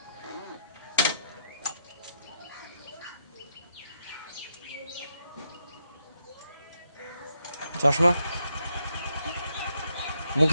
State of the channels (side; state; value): both; inverted; correlation -0.79